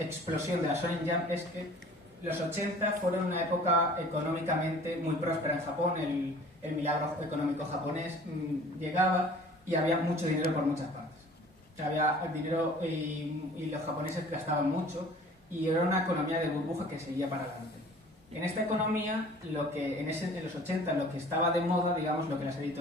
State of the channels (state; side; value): normal; both; correlation 0.48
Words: de la Shonen Jump, es que los 80 fueron una época económicamente muy próspera en Japón. El milagro económico japonés llegaba y había mucho dinero por muchas partes. Había dinero y los japoneses gastaban mucho y era una economía de burbuja que seguía para adelante. En esta economía, en los 80, lo que estaba de moda, digamos, lo que las